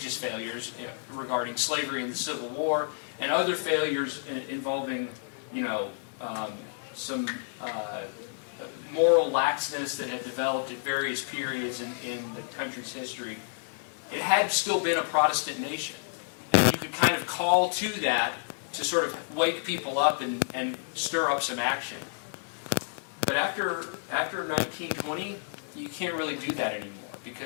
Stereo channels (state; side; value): silent; right; digital silence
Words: failures regarding slavery and the Civil War, and other failures involving, some moral laxness that had developed at various periods in the country's history, it had still been a Protestant nation. And you could kind of call to that to sort of wake people up and stir up some action. But after 1920, you can't really do that anymore